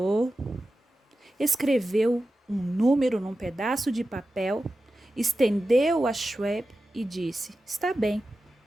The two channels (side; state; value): both; normal; correlation 0.93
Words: escreveu um número num pedaço de papel, estendeu a Schwab e disse: está bem,